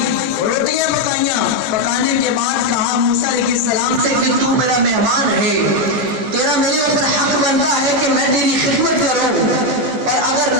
روٹیاں پکائیاں، پکانے کے بعد کہا موسیٰ علیہ السلام سے کہ تو میرا مہمان ہے، تیرا میرے اوپر حق بنتا ہے کہ میں تیری خدمت کروں، اور اگر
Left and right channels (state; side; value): late; left; 14 ms